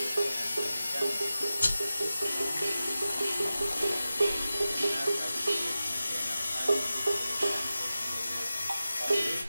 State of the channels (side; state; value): both; inverted; correlation -0.94